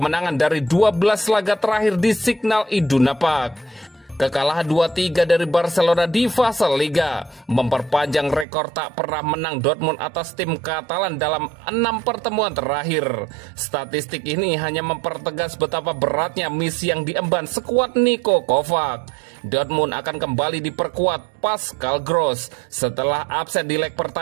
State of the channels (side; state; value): left; drops out; at 8.5 s